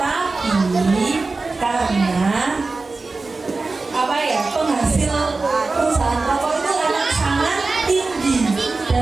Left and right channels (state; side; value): quieter; left; 3.7 dB